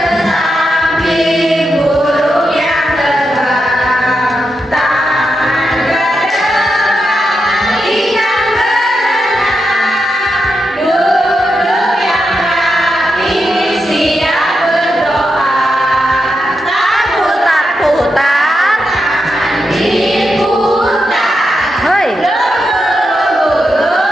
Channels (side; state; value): both; normal; correlation 0.86